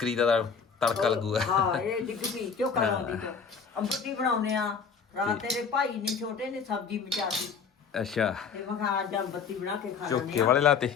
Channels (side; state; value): right; quieter; 6.0 dB